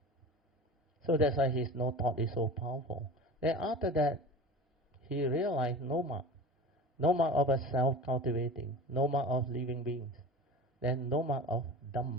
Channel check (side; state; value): both; normal; correlation 0.34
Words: So that's why his no thought is so powerful. Then after that, he realized no mark of a self-cultivating, no mark of living beings. Then no mark of